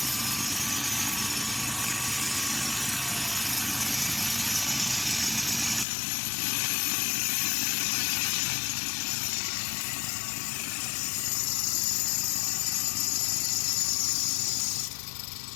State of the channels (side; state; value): right; drops out; at 5.9 s